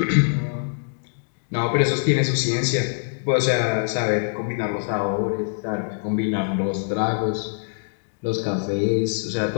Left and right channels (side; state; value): right; silent; digital silence